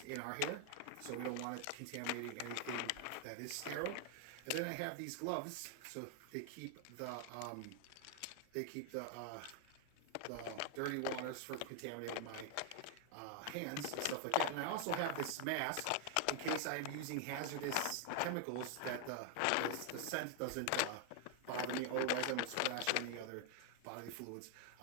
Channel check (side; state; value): both; different; correlation 0.00